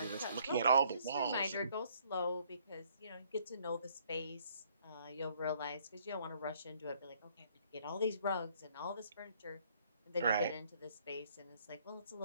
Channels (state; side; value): inverted; both; correlation -0.64